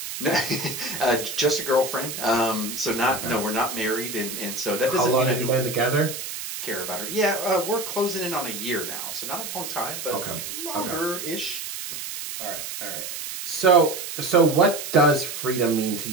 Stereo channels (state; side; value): noise; right; hiss, 7 dB below the sound